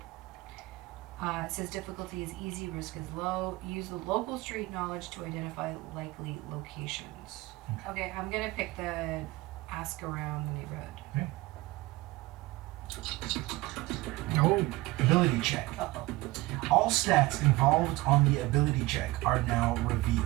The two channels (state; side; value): quieter; left; 19.9 dB